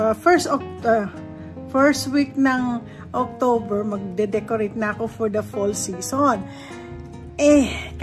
week ng October, magde-decorate na ako for the fall season.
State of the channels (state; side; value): identical; both; correlation 1.00